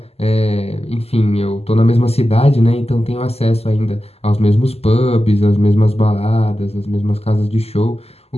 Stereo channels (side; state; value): right; late; 0.29 ms